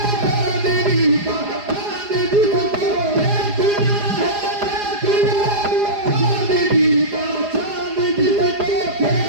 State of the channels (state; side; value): late; left; 4.9 ms